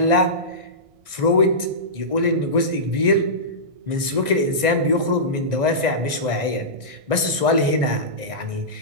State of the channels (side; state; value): left; late; 1.6 ms